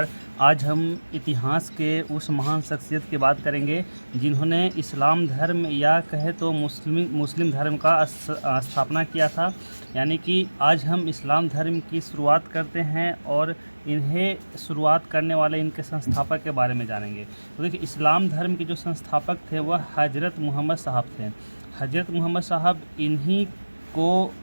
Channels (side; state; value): both; inverted; correlation -1.00